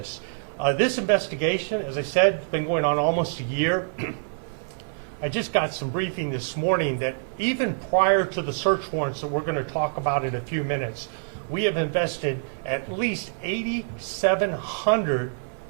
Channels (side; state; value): left; silent; 58 dB below the other